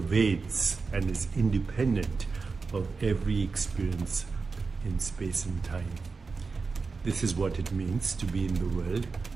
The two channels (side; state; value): left; quieter; 4.5 dB